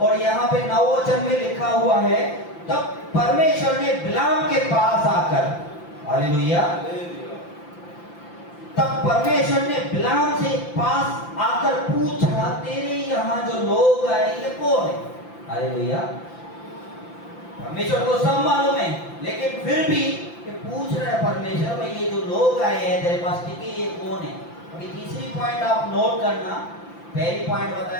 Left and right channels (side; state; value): right; late; 5.9 ms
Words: यहाँ पे 9 वचन में लिखा हुआ है तब परमेश्वर ने बिलाम के पास आकर, हालेलुया, तब परमेश्वर ने बिलाम से पास आकर पूछा तेरे यहाँ जो लोग आए ये कौन है। हालेलुया। परमेश्वर को सब मालूम है, लेकिन फिर भी ये पूछ रहा है परमेश्वर, भाई ये जो लोग आए हैं तेरे पास टिके ये कौन है। अभी तीसरी पॉइंट आप नोट करना। पहली पॉइंट